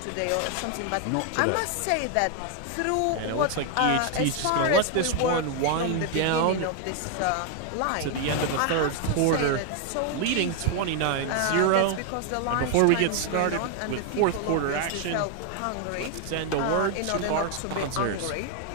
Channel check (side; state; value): both; different; correlation 0.00